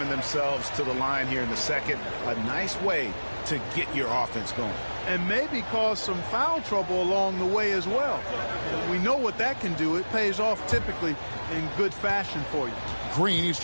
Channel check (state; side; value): inverted; both; correlation -1.00